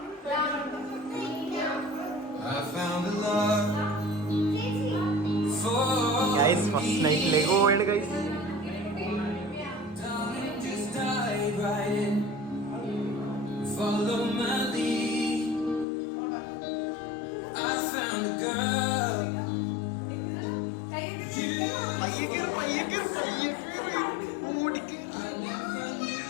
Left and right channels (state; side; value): drops out; right; at 15.9 s